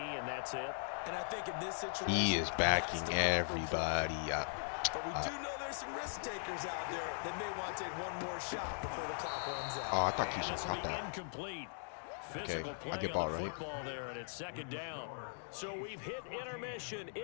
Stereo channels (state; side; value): silent; right; digital silence